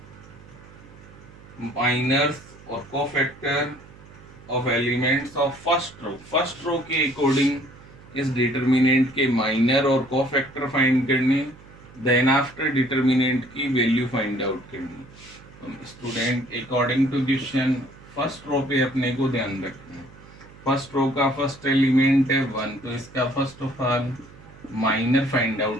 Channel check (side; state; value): right; noise; hum, 21 dB below the sound